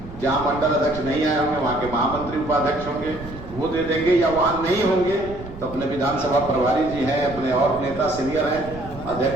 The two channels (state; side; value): noise; right; rumble, 14 dB below the sound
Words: जहां मंडल अध्यक्ष नहीं आए होंगे वहां के महामंत्री उपाध्यक्ष होंगे, वो दे देंगे, या वहां नहीं होंगे तो अपने विधानसभा प्रभारी जी हैं, अपने और नेता सीनियर हैं,